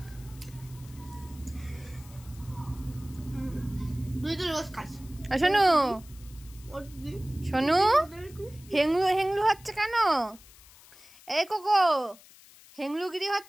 শোনু শোনু, হেংলু হেংলু হচ্ছে কেন? এই কোকো, হেংলুগিরি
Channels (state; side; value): noise; left; hiss, 23 dB below the sound